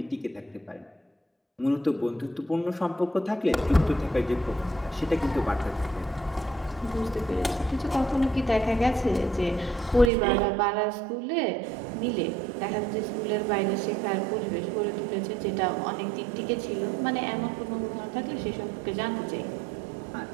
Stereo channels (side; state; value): left; drops out; at 10.1 s